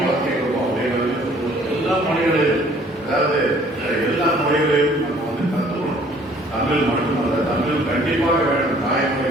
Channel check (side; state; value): both; normal; correlation 0.57